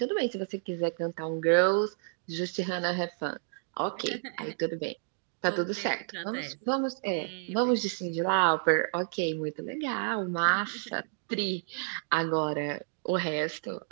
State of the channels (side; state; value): left; silent; digital silence